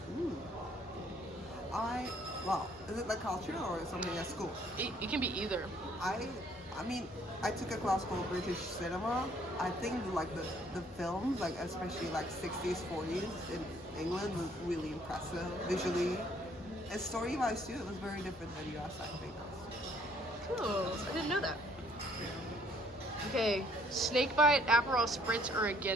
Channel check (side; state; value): both; normal; correlation 0.63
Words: Well, is it like culture or something at school? It can be either. I mean, I took a class called British cinema. I think like the films, like especially like 60s, 40s in England was really impressive visually. And story-wise too, it was very different than US, I think. Cool. I didn't know that. Okay, snakebite, Aperol Spritz, or a